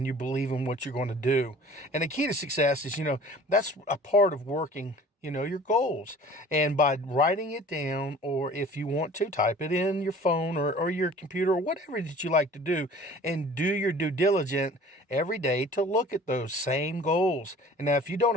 you believe in what you're going to do. And the key to success is, that's a part of working your goals. And by writing it down, or if you want to, type it in your phone or your computer or whatever that you like to do, and do your due diligence every day to look at those same goals. And now if you don't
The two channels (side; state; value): both; normal; correlation 0.46